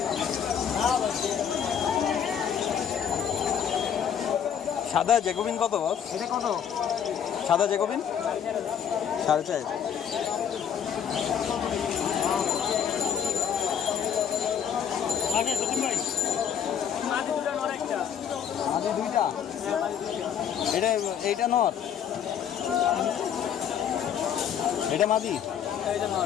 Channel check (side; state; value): right; quieter; 8.4 dB